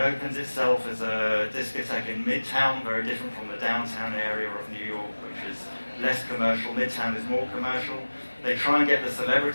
itself as a discotheque in Midtown, very different from the downtown area of New York, which is less commercial. Midtown is more commercial. They try and get the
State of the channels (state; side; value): inverted; both; correlation -1.00